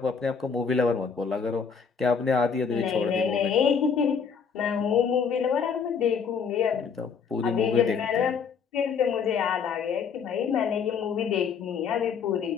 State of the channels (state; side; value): quieter; right; 6.2 dB